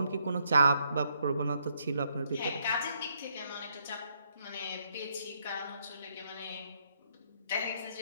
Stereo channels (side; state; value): both; inverted; correlation -0.74